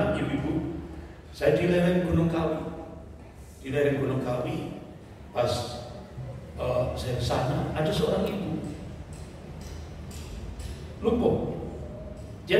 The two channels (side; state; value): both; identical; correlation 1.00